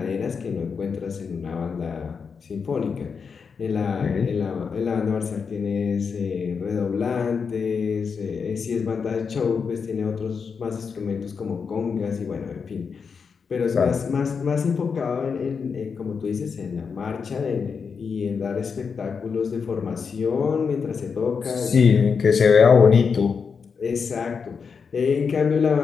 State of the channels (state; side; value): quieter; right; 5.8 dB